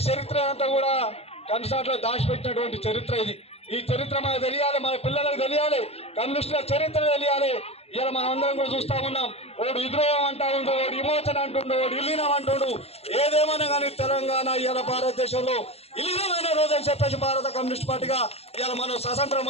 చరిత్ర అంతా కూడా కన్సాట్లో దాచిపెట్టినటువంటి చరిత్ర ఇది. ఈ చరిత్ర మనకు తెలియాలి, మన పిల్లలకు తెలియాలి, కమ్యూనిస్టుల చరిత్ర తెలియాలి. ఇలా మనం అందరం కూడా చూస్తా ఉన్నాం. వాడు విద్రోహం అంటా ఉండు, వాడు విమోచన అంటుండు, వాడు విలీనం అంటుండు. ఏదేమన్నా కానీ తెలంగాణ ఇవాళ భారతదేశంలో విలీనమైన రోజు అని చెప్పేసి భారత కమ్యూనిస్ట్ పార్టీగా ఇవాళ మనం స్వతంత్రం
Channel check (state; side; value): late; right; 0.29 ms